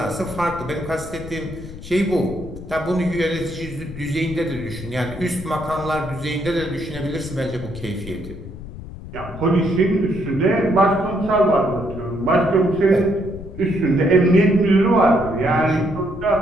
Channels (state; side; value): noise; left; rumble, 13 dB below the sound